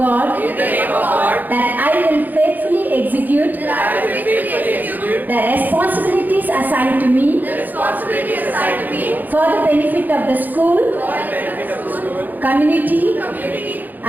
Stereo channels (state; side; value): late; left; 0.085 ms